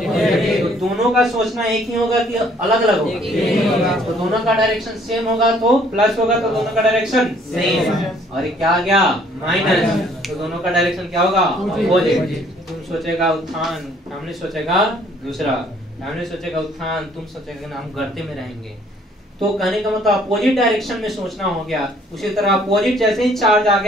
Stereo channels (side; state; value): both; normal; correlation 0.61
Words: तो दोनों का सोचना एक ही होगा कि अलग अलग होगा? तो दोनों का डायरेक्शन सेम होगा तो प्लस होगा, तो दोनों का डायरेक्शन सेम। और क्या आ गया? माइनस, तो दोनों का डायरेक्शन क्या होगा? पॉजिटिव। तुम सोचेगा उत्थान, फैमिली सोचेगा दूसरा, फैमिली सोचेगा उत्थान, तुम सोचेगा हम गर्ते में रहेंगे। तो कहने का मतलब अपोजिट डायरेक्शन में सोचना हो गया। उसी तरह अपोजिट जैसे ही चार्ज आ